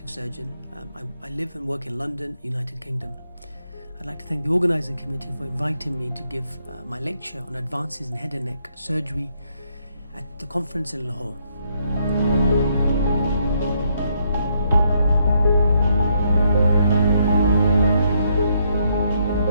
surgeon. I live and work in London, United Kingdom. I'd like to thank the organising committee for inviting me to give my lecture on advances in head and neck surgery at the conference in Lahore.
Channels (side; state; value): both; inverted; correlation -0.74